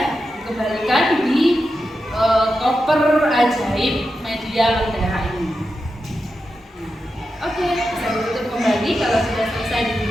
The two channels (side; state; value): both; normal; correlation 0.89